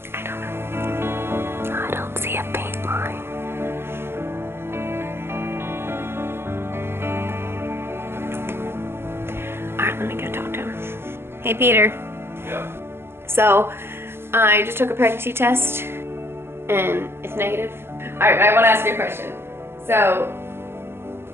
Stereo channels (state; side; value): late; left; 0.11 ms